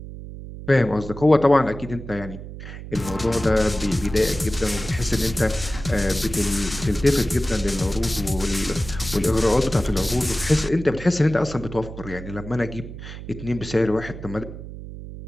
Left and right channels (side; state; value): right; noise; hum, 12 dB below the sound